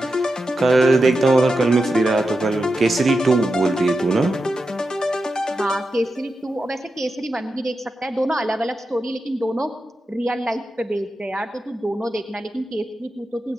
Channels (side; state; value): both; normal; correlation 0.89